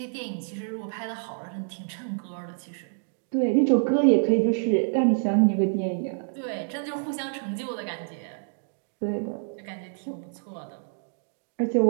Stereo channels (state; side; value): silent; left; digital silence